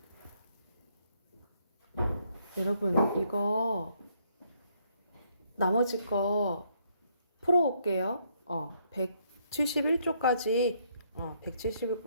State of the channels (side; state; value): both; inverted; correlation -0.71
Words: 여러분 이거 나머지 거 풀어올게요.